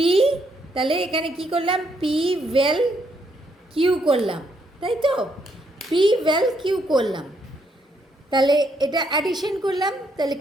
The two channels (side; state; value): both; normal; correlation 0.74